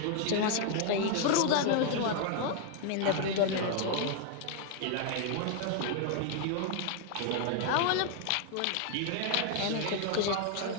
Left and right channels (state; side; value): different; both; correlation 0.00